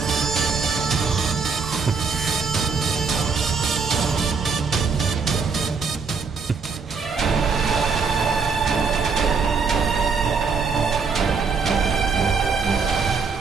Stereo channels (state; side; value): quieter; left; 5.1 dB